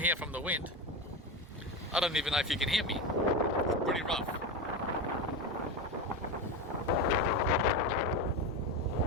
from the wind. I don't even know if you can hear me. It's pretty rough.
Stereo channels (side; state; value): both; normal; correlation 0.19